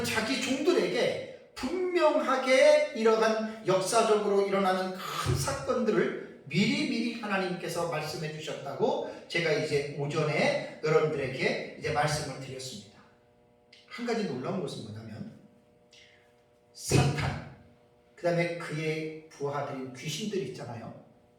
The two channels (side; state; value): both; identical; correlation 1.00